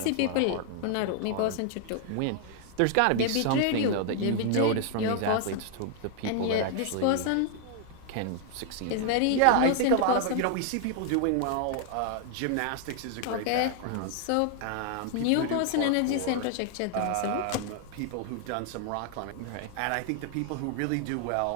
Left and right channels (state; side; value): different; both; correlation 0.00